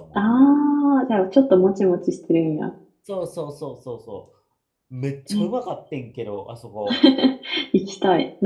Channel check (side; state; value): both; identical; correlation 1.00